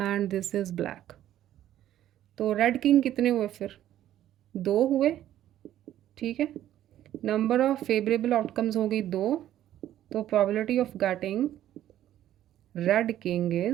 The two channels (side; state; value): left; quieter; 12.3 dB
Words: this is black. तो रेड किंग कितने हुए फिर? 2 हुए, ठीक है। नंबर ऑफ फेवरेबल आउटकम्स हो गई 2, तो probability of getting red king